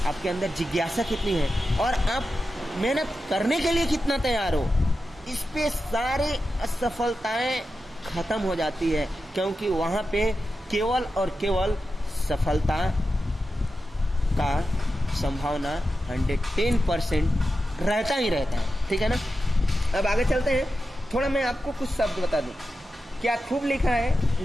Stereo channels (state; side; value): normal; both; correlation 0.91